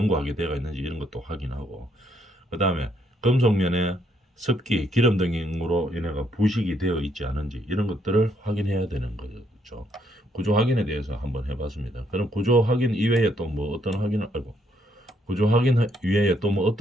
되어 있는지 이런 것도 확인하고, 그 다음에 금속면에 습기, 기름 등으로 인해가 부식이 되어 있지 않은지 이런 것들을 확인해야 되는 거죠. 구조 확인에 대해서 한번 해봤습니다. 그럼 구조 확인 이외에 또 뭐 어떤 확인을 알고, 구조 확인 이외에 또 뭐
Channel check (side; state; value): both; normal; correlation 0.72